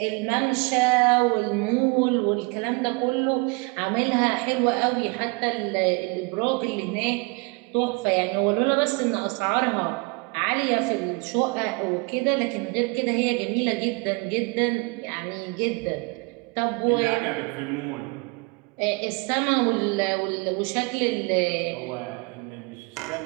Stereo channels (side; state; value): left; quieter; 29.5 dB